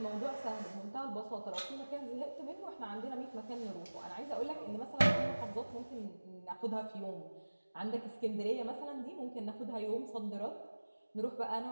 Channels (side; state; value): both; inverted; correlation -1.00